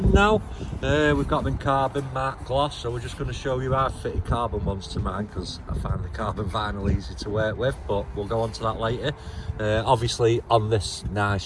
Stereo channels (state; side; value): identical; both; correlation 1.00